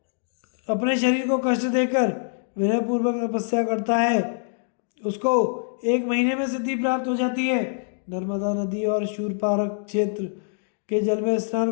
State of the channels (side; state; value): right; silent; digital silence